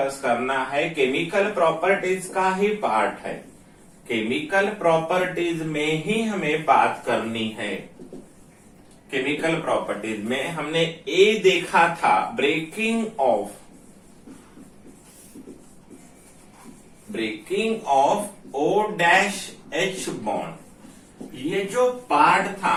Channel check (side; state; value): both; identical; correlation 1.00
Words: करना है केमिकल प्रॉपर्टीज का ही पार्ट है, केमिकल प्रॉपर्टीज में ही हमें बात करनी है। केमिकल प्रॉपर्टीज में हमने ए देखा था, ब्रेकिंग ऑफ OH बॉन्ड। ये जो पार्ट था